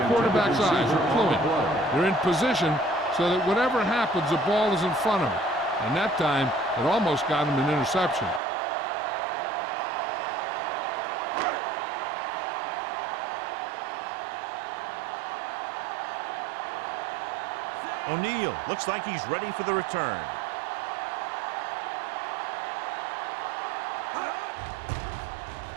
quarterback's eyes. They're cluing. They're in position so that whatever happens, the ball is in front of him. And that time, it almost got him an interception. O'Neal looks like he's ready for the return.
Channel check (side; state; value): left; drops out; at 8.4 s